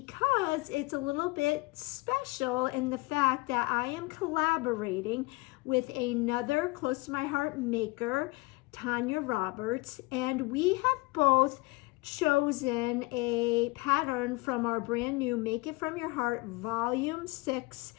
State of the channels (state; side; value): quieter; right; 23.2 dB